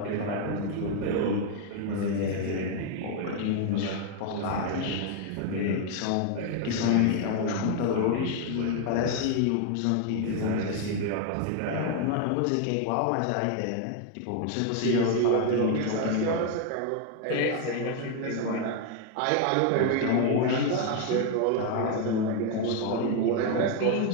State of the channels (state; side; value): different; both; correlation 0.01